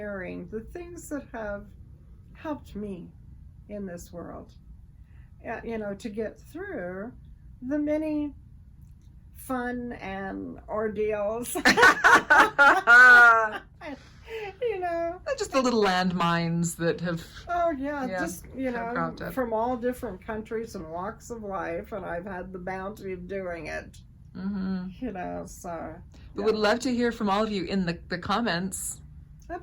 the things that have helped me in this world, to get through the many fun and ordeals. Just the little landmines that have. Oh yeah, just cropped up. From all different countries and walks of life, and I've had the bounty of doing it. So. We would love to hear from all of you in the comments.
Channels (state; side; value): identical; both; correlation 1.00